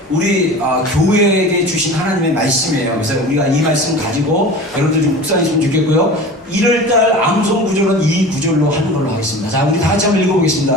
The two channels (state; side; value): normal; both; correlation 0.36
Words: 우리 교회에게 주신 하나님의 말씀이에요. 그래서 우리가 이 말씀 가지고 여러분들 좀 묵상했으면 좋겠고요. 1월달 암송 구절은 이 구절로 하는 걸로 하겠습니다. 자, 우리 다 같이 한번